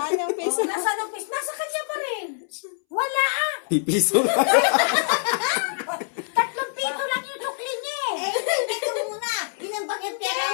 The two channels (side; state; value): right; silent; 62 dB below the other